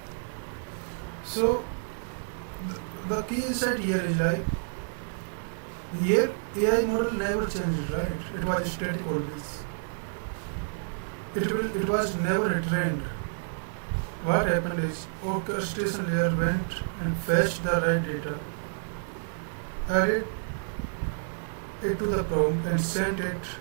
So the key insight here is like, here AI model never changes, right? It was static always. It was never retrained. What happened is orchestration layer went and fetched the right data, added it to the prompt and sent it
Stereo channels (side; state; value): left; silent; 58 dB below the other